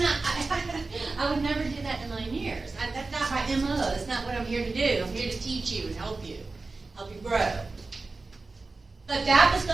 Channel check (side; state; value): left; quieter; 3.7 dB